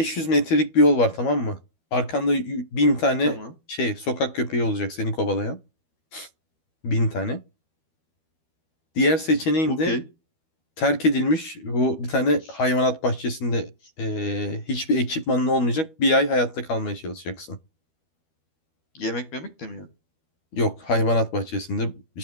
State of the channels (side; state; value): right; late; 12 ms